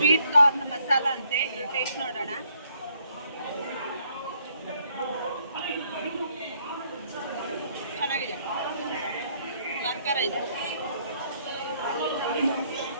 ಕಾರ್ನ್ ಮಸಾಲ ಅಂತೆ, ಟೇಸ್ಟ್ ನೋಡೋಣ. ಚೆನ್ನಾಗಿದೆ, ಖಾರ ಇದೆ.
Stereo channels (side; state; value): both; inverted; correlation -0.68